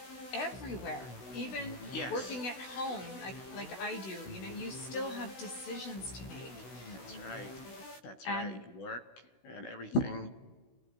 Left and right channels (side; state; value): right; late; 16 ms